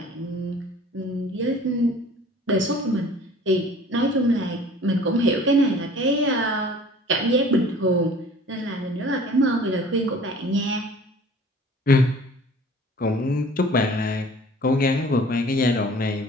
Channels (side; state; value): both; normal; correlation 0.48